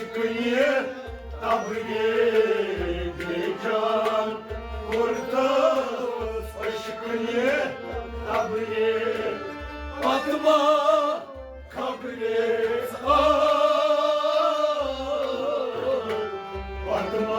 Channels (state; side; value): identical; both; correlation 1.00